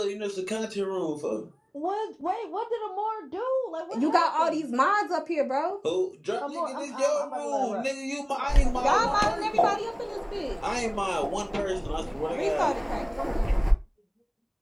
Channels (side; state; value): both; identical; correlation 1.00